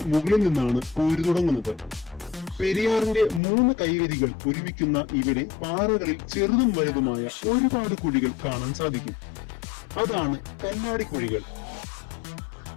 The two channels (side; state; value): right; drops out; at 3.4 s